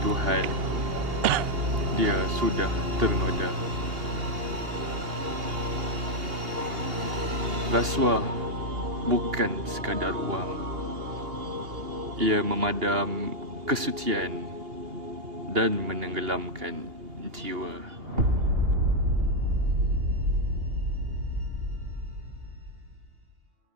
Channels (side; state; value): left; late; 2.8 ms